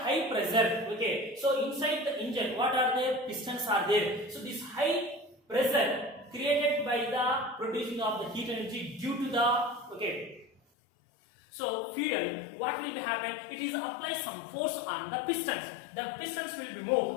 pressure, so inside the engine, what are there? Pistons are there. So this high pressure created by the producing of the heat energy due to the so fuel, what will be happen? It is apply some force on the pistons. The pistons will be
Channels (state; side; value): drops out; right; at 10.6 s